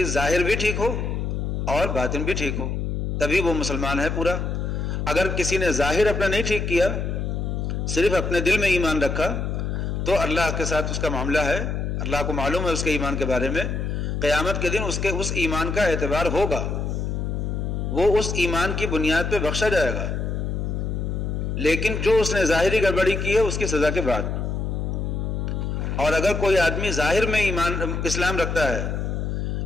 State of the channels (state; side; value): noise; left; hum, 2 dB below the sound